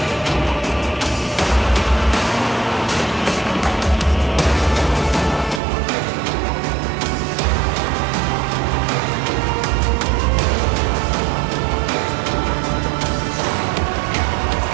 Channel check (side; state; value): left; drops out; at 5.6 s